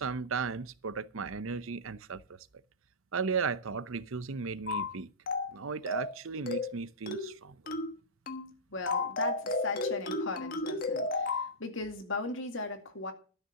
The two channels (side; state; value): both; normal; correlation -0.13